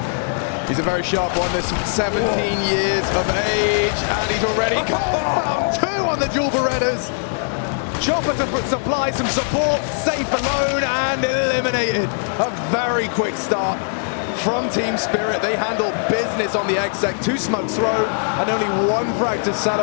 He's a very sharp one. This 17 years of age, and he's already found 2 on the Jewel Berettas. Chopper to supply some support, safe alone, and eliminated. A very quick start from Team Spirit. They handle business on the exec. 2 smokes thrown, and only 1 frag to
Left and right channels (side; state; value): right; silent; digital silence